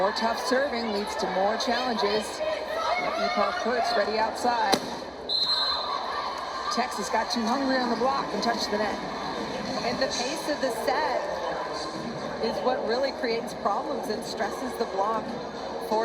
tough serving leads to more challenges. Epar Kurtz ready outside. Texas got too hungry on the block and touched the net. And the pace of the set is what really creates problems and stresses the block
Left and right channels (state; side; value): identical; both; correlation 1.00